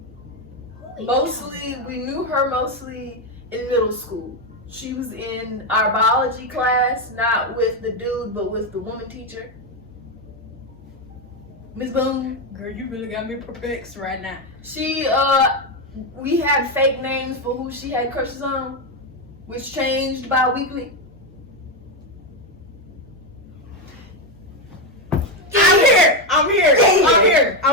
Mostly, we knew her mostly in middle school. She was in our biology class, not with the dude, but with the woman teacher. Miss Boone. Girl, you really got me perplexed right now. She, we had fake names for who she had crushes on, which changed bi-weekly. I'm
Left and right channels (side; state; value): both; normal; correlation 0.08